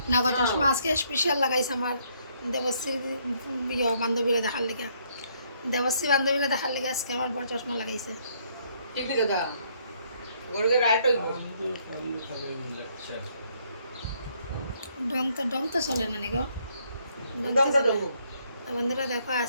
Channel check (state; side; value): inverted; both; correlation -0.69